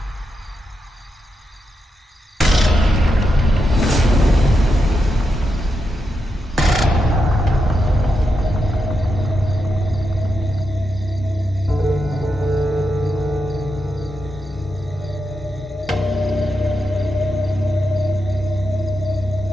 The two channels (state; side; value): normal; both; correlation 0.86